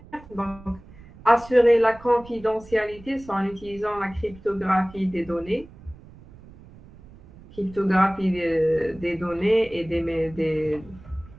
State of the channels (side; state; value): right; noise; rumble, 21 dB below the sound